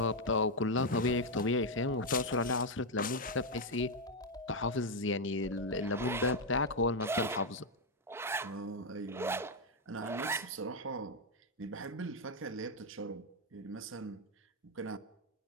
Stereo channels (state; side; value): normal; both; correlation 0.02